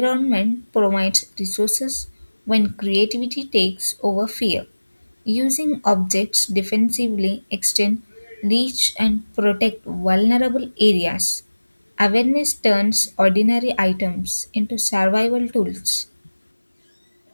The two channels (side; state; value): both; inverted; correlation -1.00